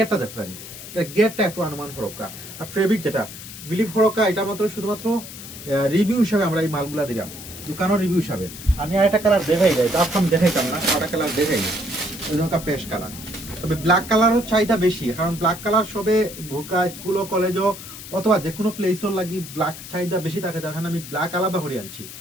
দেখতে পারি, এটা গেটটা একটু অনুমান ফরকা। আর ফেব্রিক যেটা বিলিভ ফরকা, এটা মাত্র শুধুমাত্র রিভিউ হিসাবে আমরা এই মালগুলা দিলাম, দোকানের রিভিউ হিসাবে। আমি আর একটা কালার দেখাই যাই, তার আমি দেখাইতাম না, একটা কালার দেখাই, ওই পেস্ট কালার। তবে ব্ল্যাক কালারও চাহিদা বেশি, কারণ ব্ল্যাক কালার সবে বোরকা স্কুল ও কলেজও অথবা যে কোনো প্লেসও লাগি ব্ল্যাক চাহিদা বেশি থাকে, যার কারণে আমি ব্ল্যাক আলাদা করে আনছি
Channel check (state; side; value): noise; left; hiss, 13 dB below the sound